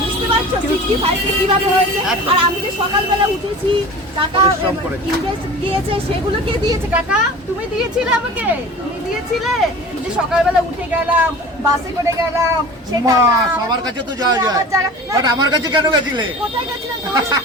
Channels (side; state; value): both; normal; correlation 0.38